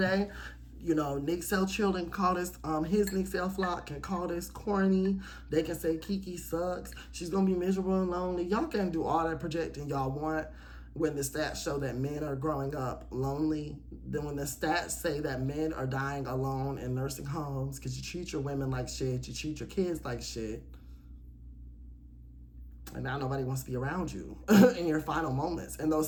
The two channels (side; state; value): both; identical; correlation 1.00